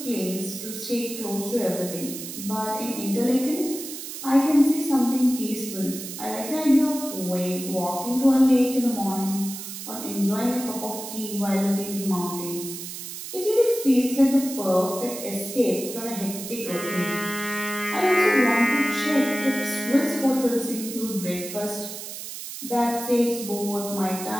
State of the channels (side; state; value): right; noise; hiss, 9 dB below the sound